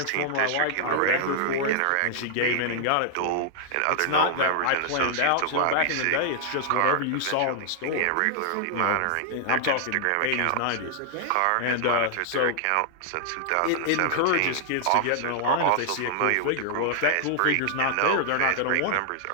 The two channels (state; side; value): different; both; correlation -0.01